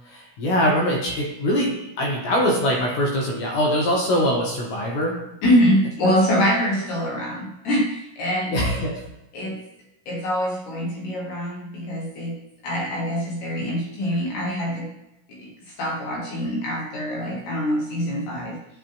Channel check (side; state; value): right; late; 16 ms